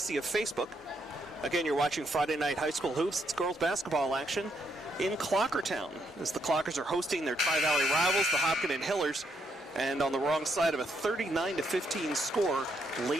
of Facebook. Again, you're watching Friday Night High School Hoops. It's girls basketball action in Clockertown, as the Clockers are hosting their Tri-Valley rivals, the Hopkinton Hillers, and on the wrong side of a 39-15 score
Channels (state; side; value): normal; both; correlation 0.75